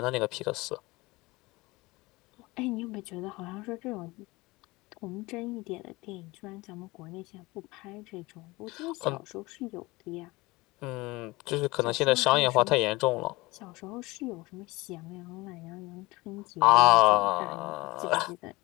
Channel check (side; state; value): right; quieter; 22.1 dB